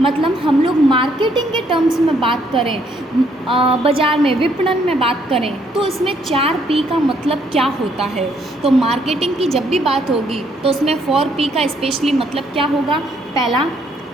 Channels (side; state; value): both; normal; correlation 0.69